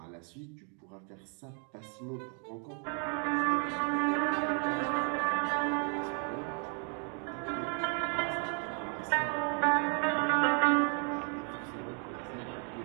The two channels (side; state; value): left; quieter; 40.0 dB